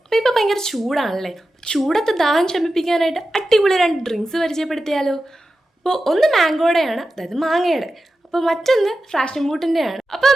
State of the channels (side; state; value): both; normal; correlation 0.92